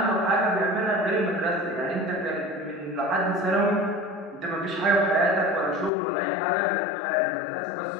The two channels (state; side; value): drops out; right; at 5.9 s